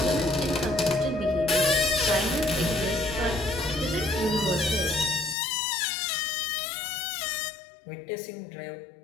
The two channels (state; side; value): drops out; right; at 5.4 s